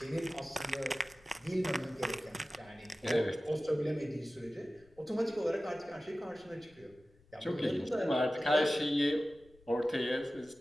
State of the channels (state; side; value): noise; left; rumble, 28 dB below the sound